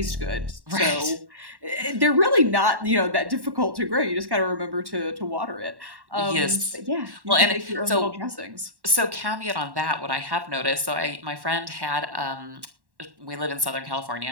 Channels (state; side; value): late; left; 1.1 ms